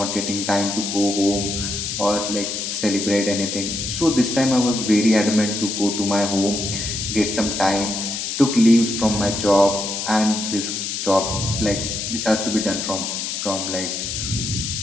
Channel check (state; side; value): noise; left; hiss, 3 dB below the sound